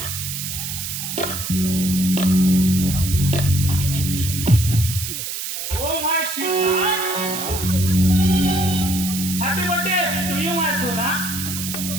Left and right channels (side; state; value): right; noise; hiss, 5 dB below the sound